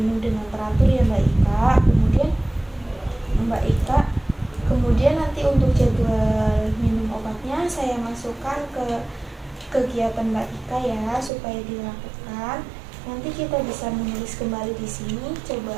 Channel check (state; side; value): drops out; left; at 11.3 s